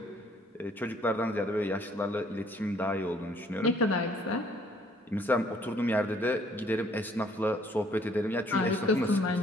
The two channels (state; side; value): normal; both; correlation 0.61